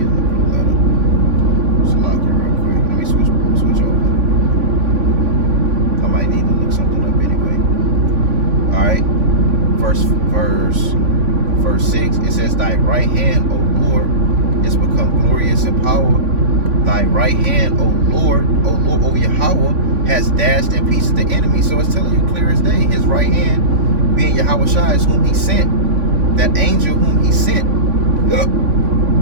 a letter. Just lock it real quick. Let me switch over. I might need to look something up anyway. Alright. Verse 6, it says, thy right hand, O Lord, is become glorious in power. Thy right hand, O Lord, O Yahawah, has dashed in pieces the enemy. So it's telling you clear as day, his right hand being Yahawah is whom he sent. That angel whom he sent.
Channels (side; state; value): left; late; 3.5 ms